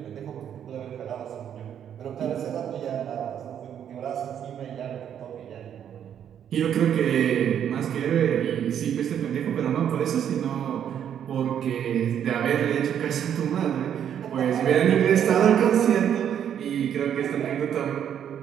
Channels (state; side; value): quieter; left; 9.2 dB